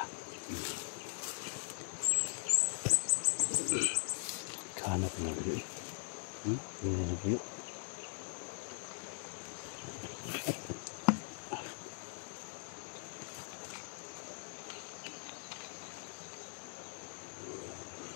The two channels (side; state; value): right; silent; digital silence